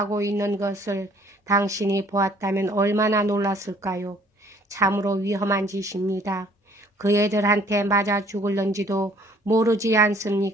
있는 것을 당신이 보았다면 얼마나 놀랐을까요? 참으로 위험한 짓입니다. 그 애들한테 맞아 죽을런지도 모르지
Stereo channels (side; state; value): both; normal; correlation 0.58